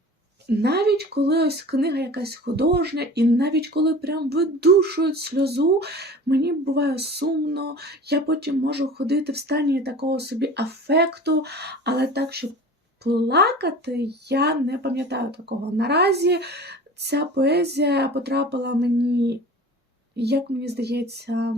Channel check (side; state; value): both; normal; correlation 0.39